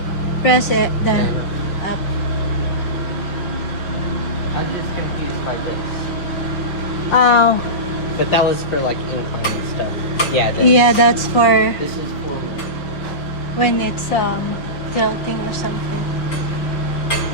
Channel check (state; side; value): late; right; 5.5 ms